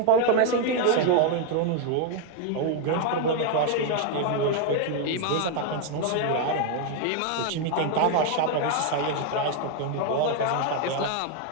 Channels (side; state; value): both; different; correlation 0.00